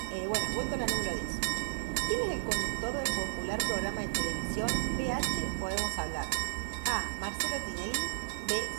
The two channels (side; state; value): left; silent; 56 dB below the other